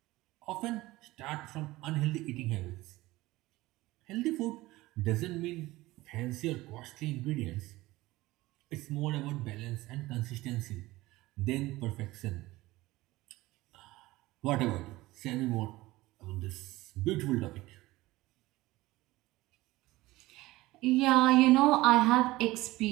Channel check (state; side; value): quieter; left; 18.8 dB